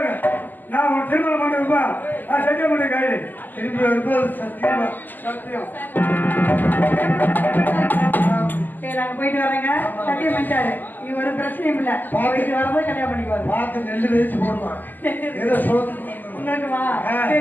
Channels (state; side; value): late; right; 0.086 ms